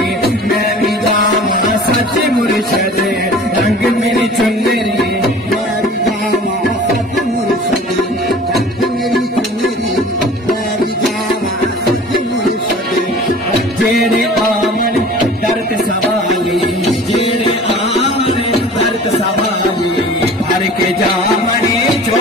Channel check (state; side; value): normal; both; correlation 0.44